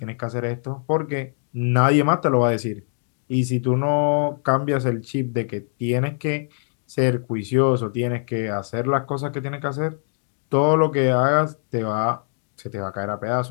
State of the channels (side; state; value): right; silent; 64 dB below the other